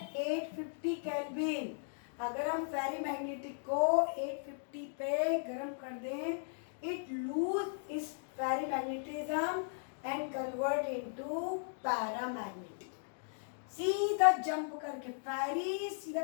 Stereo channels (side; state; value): right; silent; digital silence